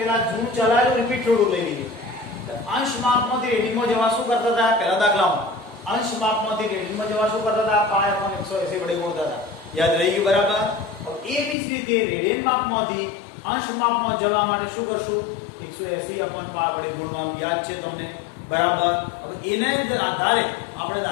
જૂનું ચલાવેલું રિપીટ થોડું લઈ લઈએ. અંશ માપમાંથી રેડિયનમાં જવા શું કરતા હતા? પહેલા દાખલામાં અંશ માપમાંથી રેડિયનમાં જવા શું કરતા હતા? પાય અપોન 180 વડે ગુણતા હતા. યાદ રહી ગયું બરાબર. એવી જ રીતે રેડિયન માપમાંથી અંશ માપમાં જવા માટે શું કરશું? 180 અપોન પાય વડે ગુણવાનું. યાદ છે તમને બરાબર. હવે એના આધારે આપણે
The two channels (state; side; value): drops out; right; at 11.6 s